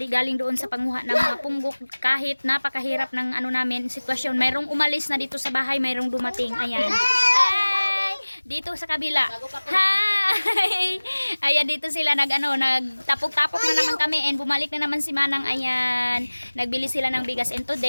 galing doon sa panguha ng mga punggok. Kahit napakahirap ng ano namin, sitwasyon. Mayroong umalis na dito sa bahay, mayroong dumating. Ayan. Hi! Dito sa kabila. Hi! Ayan, dito sila nagtapok-tapok na naman kami and bumalik na naman si Manang. Ayan. Nagbili sila ng bigas and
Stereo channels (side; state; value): both; inverted; correlation -1.00